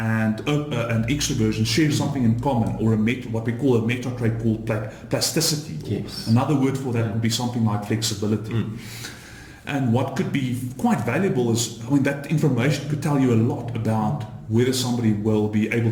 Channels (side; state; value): both; identical; correlation 1.00